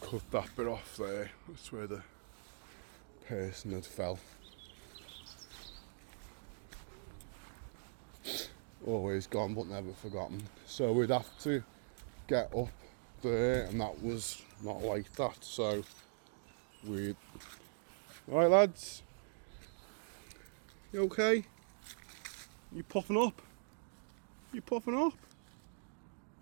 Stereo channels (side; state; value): left; silent; digital silence